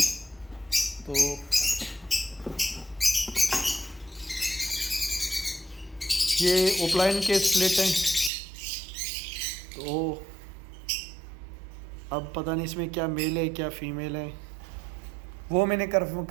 तो ये ओपलाइन के स्प्लिट हैं। तो अब पता नहीं इसमें क्या मेल है क्या फीमेल है, वो मैंने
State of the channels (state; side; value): drops out; left; at 8.3 s